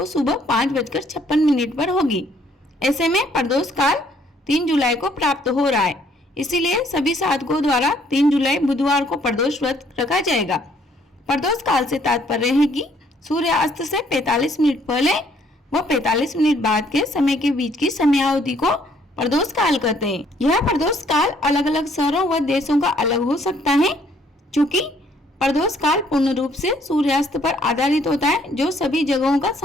सुबह 5:56 पर होगी। ऐसे में प्रदोष काल 3 जुलाई को प्राप्त हो रहा है, इसीलिए सभी साधकों द्वारा 3 जुलाई बुधवार को प्रदोष व्रत रखा जाएगा। प्रदोष काल से तात्पर्य है कि सूर्यास्त से 45 मिनट पहले व 45 मिनट बाद के समय के बीच की समयावधि को प्रदोष काल कहते हैं। यह प्रदोष काल अलग अलग शहरों व देशों का अलग हो सकता है, चूँकि प्रदोष काल पूर्ण रूप से सूर्यास्त पर आधारित होता है, जो सभी जगहों का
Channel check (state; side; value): normal; both; correlation 0.64